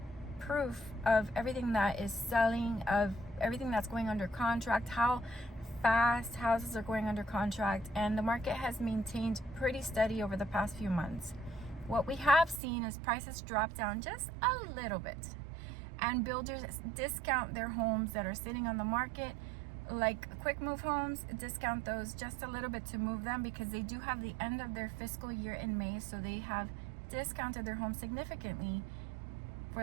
proof of everything that is selling, of everything that's going under contract, how fast houses are going under contract, and the market has maintained pretty steady over the past few months. What we have seen is prices drop down just a little bit, and builders discount their homes that are sitting on the market, like quick move homes, discount those just a little bit to move them because they do have the end of their fiscal year in May, so they have discounted their homes significantly for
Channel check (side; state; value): left; drops out; at 12.6 s